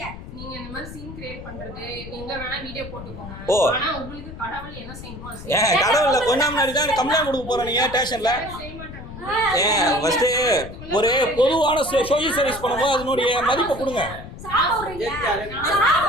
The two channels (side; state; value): left; noise; rumble, 13 dB below the sound